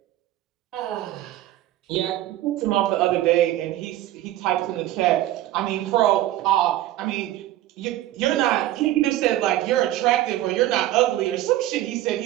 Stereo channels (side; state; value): left; quieter; 14.4 dB